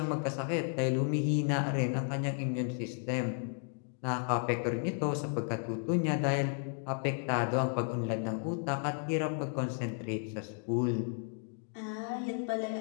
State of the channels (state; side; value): silent; right; 55 dB below the other